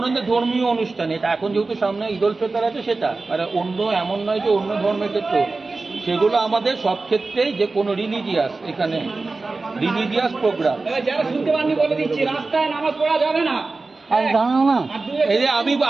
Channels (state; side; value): quieter; left; 3.7 dB